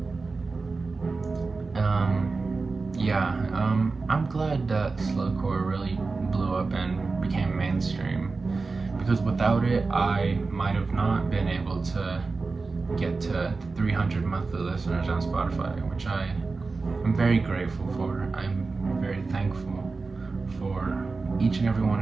I'm glad that slowcore really blew up and became mainstream, because without it I might have not been able to get to 300 monthly listeners on Spotify, which I'm very grateful for. I'm very thankful for each and every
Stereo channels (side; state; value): left; quieter; 4.0 dB